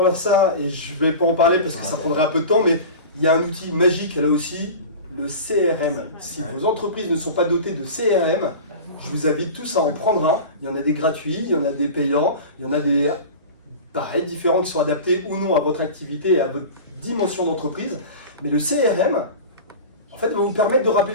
ça, et je ne vais pas en parler parce que ça prendrait un peu de temps, mais il y a un outil magique là aussi, le CRM. Si vos entreprises ne sont pas dotées de CRM, je vous invite tous à en prendre un. Il y en a des gratuits, il y en a des payants, il y en a des différents qui sont adaptés ou non à votre activité et à votre dimension d'entreprise. Mais le CRM, en fait, va vous permettre de rappeler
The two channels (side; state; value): both; inverted; correlation -0.33